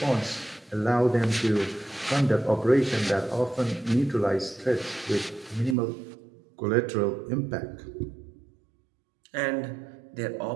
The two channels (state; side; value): drops out; left; at 5.8 s